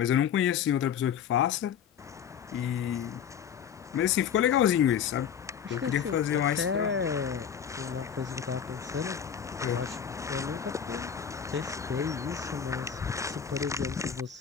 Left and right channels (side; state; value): right; quieter; 8.1 dB